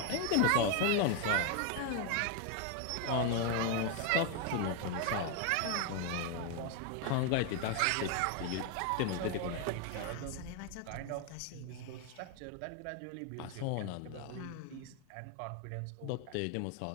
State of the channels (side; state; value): both; different; correlation 0.01